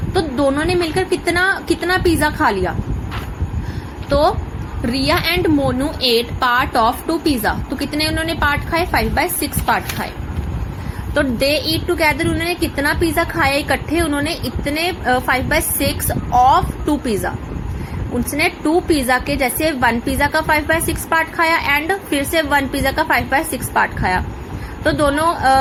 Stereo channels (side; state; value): both; identical; correlation 1.00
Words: तो दोनों ने मिलकर कितना पिज्जा खा लिया। तो Riya and Monu ate part of 2 pizza, तो कितने उन्होंने पार्ट खाए, 5/6 पार्ट खाए। तो दे ईट टुगेदर, उन्होंने कितना पिज्जा खाया इकट्ठे, उन्होंने इतने 5/6 ऑफ 2 पिज्जा। उसने 2 पिज्जा के, जैसे 1 पिज्जा का 5/6 पार्ट खाया एंड फिर से 1 पिज्जा का 5/6 पार्ट खाया। तो दोनों